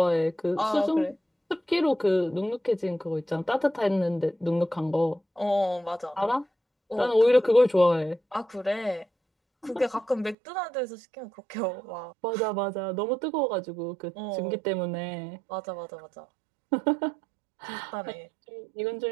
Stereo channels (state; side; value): drops out; left; at 10.4 s